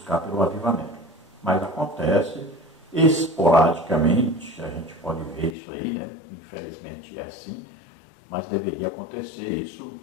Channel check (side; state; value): right; drops out; at 5.6 s